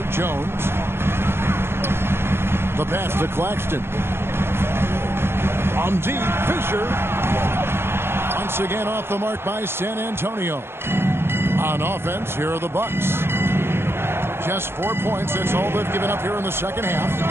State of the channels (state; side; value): late; left; 0.11 ms